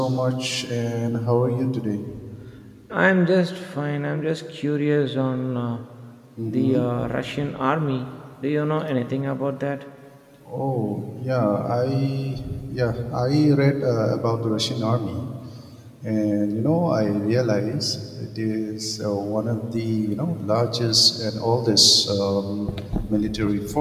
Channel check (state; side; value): identical; both; correlation 1.00